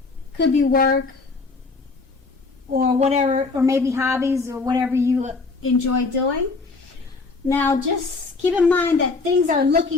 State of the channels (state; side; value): quieter; right; 4.0 dB